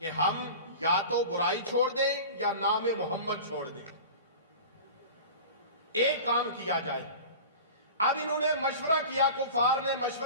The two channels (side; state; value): both; inverted; correlation -0.35